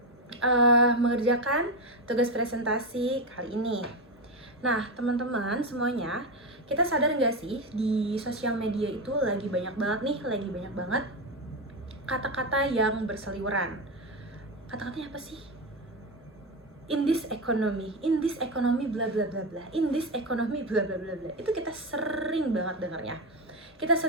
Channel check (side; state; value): both; normal; correlation 0.13